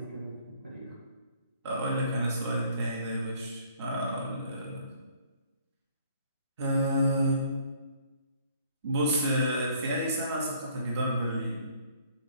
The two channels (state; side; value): inverted; both; correlation -0.59